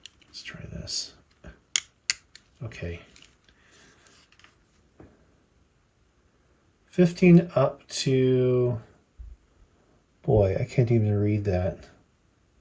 Let's try this. Okay. 15 up to, boy, I can't even read that.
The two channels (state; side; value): identical; both; correlation 1.00